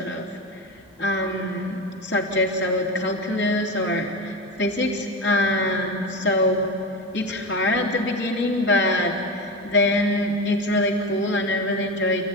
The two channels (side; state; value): both; normal; correlation 0.21